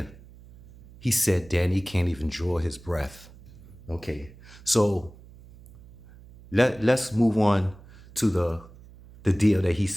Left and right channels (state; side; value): noise; right; hum, 21 dB below the sound